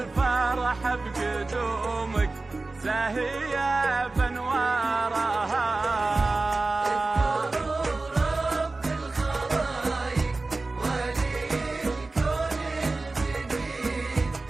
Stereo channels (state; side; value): quieter; left; 3.4 dB